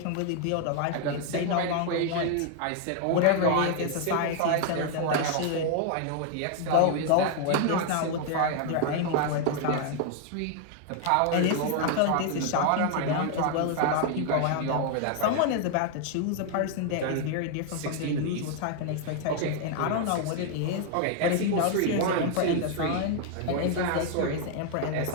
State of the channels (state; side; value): different; both; correlation 0.00